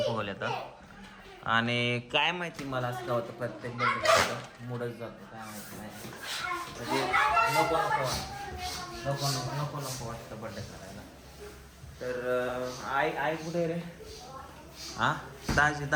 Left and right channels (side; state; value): both; identical; correlation 1.00